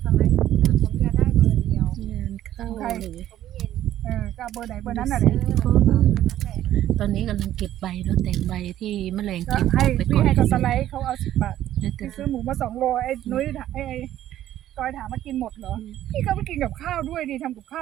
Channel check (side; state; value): left; quieter; 12.6 dB